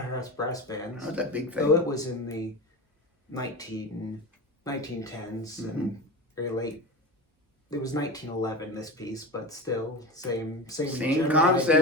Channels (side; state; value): both; normal; correlation 0.27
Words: brass bands. Oh, that big thing. So it was in the 1910s and very late. It was 1911, this piece, but still same concept.